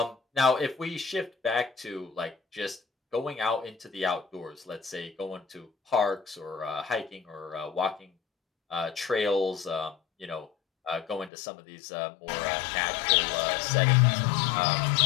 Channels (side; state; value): right; drops out; at 11.3 s